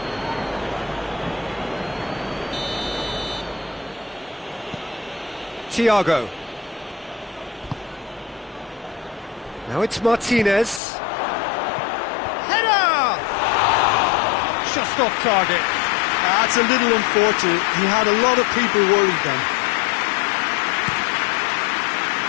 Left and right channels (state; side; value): drops out; right; at 10.8 s